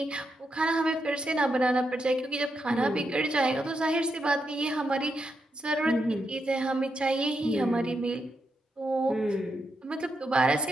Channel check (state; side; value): normal; both; correlation 0.84